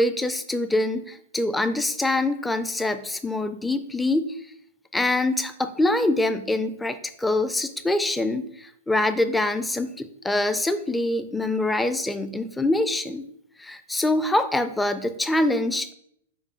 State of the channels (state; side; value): normal; both; correlation 0.79